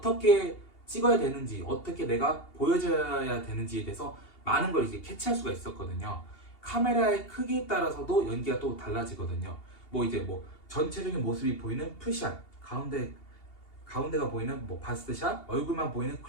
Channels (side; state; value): right; late; 2.8 ms